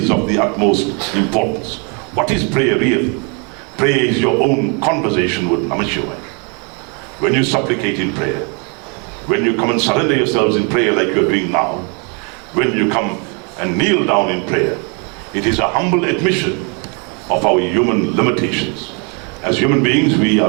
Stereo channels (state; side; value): quieter; left; 35.1 dB